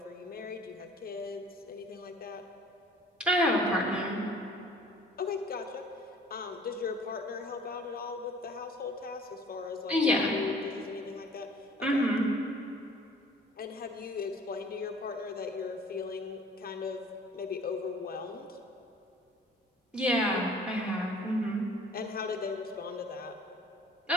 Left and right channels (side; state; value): both; normal; correlation 0.51